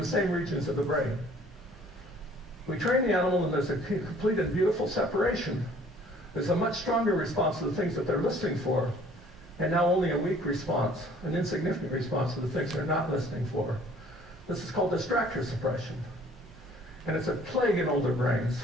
same regions of the brain. We train the animal and there's a complete and beautiful separation. There's a much stronger response to the things that they're listening for, and now only a weak response, an insignificant response to the things they're not listening for. This is called distractor suppression. And it's a plague in older brains.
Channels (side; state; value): both; normal; correlation 0.55